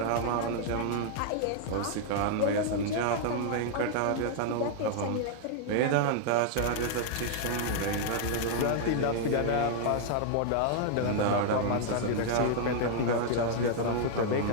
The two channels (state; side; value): different; both; correlation 0.00